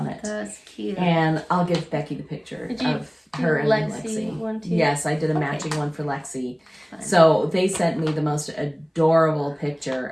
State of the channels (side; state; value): both; identical; correlation 1.00